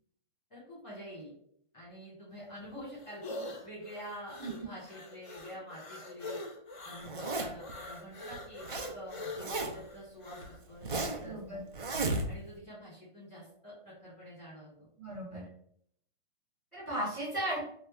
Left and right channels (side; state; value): right; late; 1.5 ms